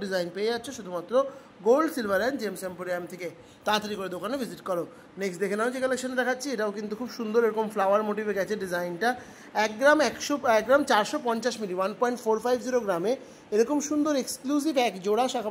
ডিজাইন পেয়ে যাচ্ছে শুধুমাত্র gold, silver and gems emporium থেকে। তাড়াতাড়ি করে দোকানে ভিজিট করো। নেক্সট দেখে নাও যে কালেকশন দেখাচ্ছি, এটাও কিন্তু খুব সুন্দর এরকম ফ্লাওয়ার মোটিভে গেছে ডিজাইনটা। 1 গ্রাম 450 মিলি, 1.450 গ্রামে এরকম সুন্দর এক্সক্লুসিভ এক জোড়া শাখা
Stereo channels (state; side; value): identical; both; correlation 1.00